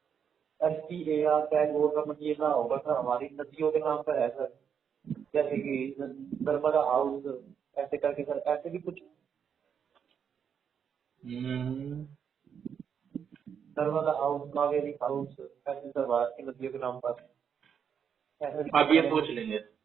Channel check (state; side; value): quieter; left; 7.5 dB